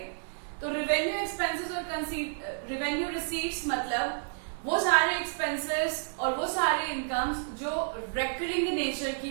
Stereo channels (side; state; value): left; silent; digital silence